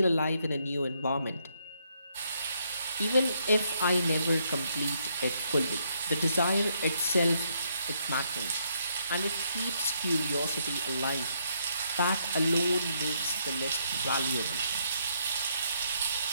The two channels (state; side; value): inverted; both; correlation -0.74